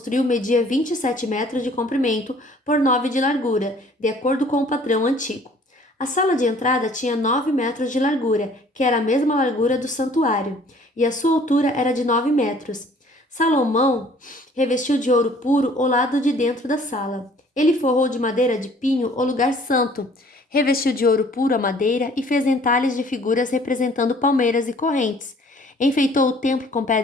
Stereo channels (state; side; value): normal; both; correlation 0.55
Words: media 27 metros de comprimento por 9 de largura, de acordo com o padrão antigo. A sala de entrada tinha 9 metros de largura, que era a mesma largura do santuário, e a sua altura era de 9 metros. Salomão revestiu de ouro puro o lado de dentro da sala. Ele forrou de madeira de pinho o lugar santo, revestiu de ouro puro a madeira e fez entalhes de figuras representando palmeiras e correntes. Enfeitou o templo com